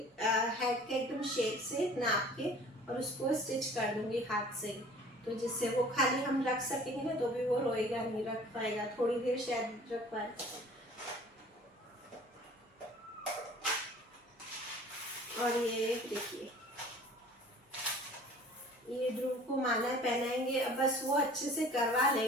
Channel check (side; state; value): both; normal; correlation 0.48